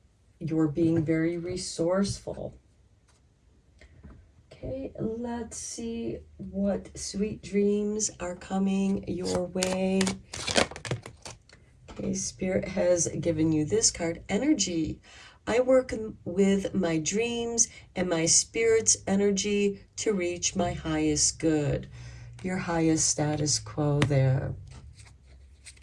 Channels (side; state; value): both; identical; correlation 1.00